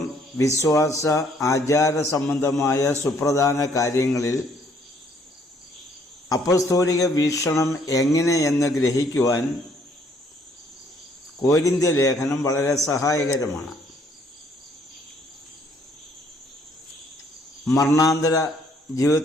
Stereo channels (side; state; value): both; normal; correlation 0.65